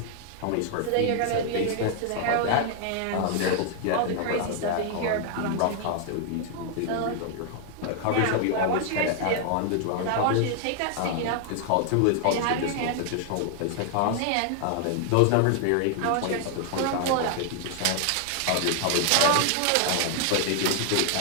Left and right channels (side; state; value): both; different; correlation 0.00